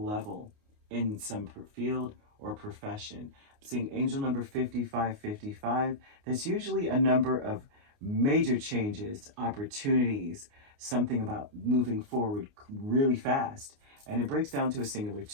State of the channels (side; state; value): left; late; 29 ms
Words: in some field or profession. I'm seeing angel number 5555. That's usually a number of major changes, opportunities, something about moving forward really fast. And it breaks down to a singular